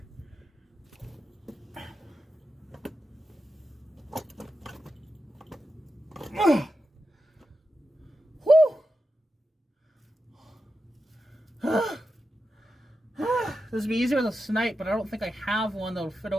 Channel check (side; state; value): both; normal; correlation 0.90